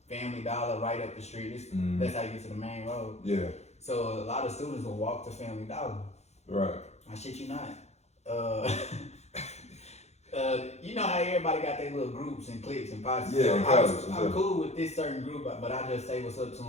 Family Dollar right up the street. That's how you get to the main road. Yeah. So a lot of students will walk to Family Dollar. Right. I shit you not. You know how everybody got their little groups and cliques and posse. Yeah, so I'm cool with this certain group, but I just say what's up to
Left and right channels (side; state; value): right; late; 0.32 ms